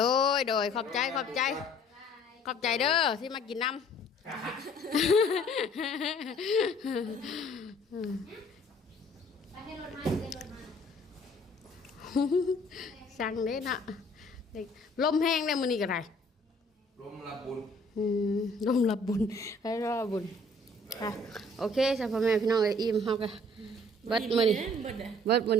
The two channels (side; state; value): both; normal; correlation 0.56